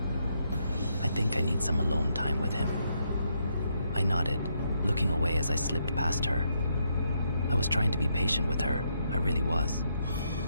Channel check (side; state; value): both; inverted; correlation -0.77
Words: I think I need some alone time with him. I nodded, looking away as I slipped past her. I was trying to be patient with her, I really was,